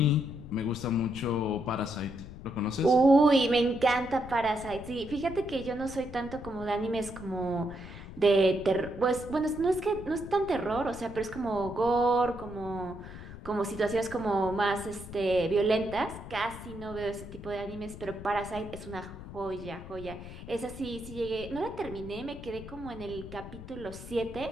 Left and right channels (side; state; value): left; noise; rumble, 13 dB below the sound